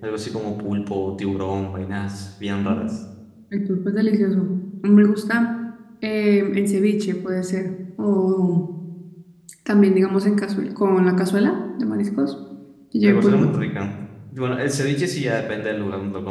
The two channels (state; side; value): identical; both; correlation 1.00